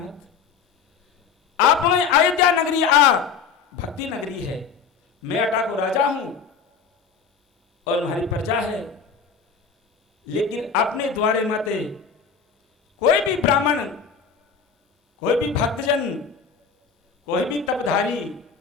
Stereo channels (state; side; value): quieter; right; 6.0 dB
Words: आप अयोध्या नगरी आ भक्ति नगरी है, मैं अटा को राजा हूं और हमारी प्रजा है, लेकिन आपने द्वारे नाते कोई भी ब्राह्मण, कोई भी भक्तजन, कोई भी तपधारी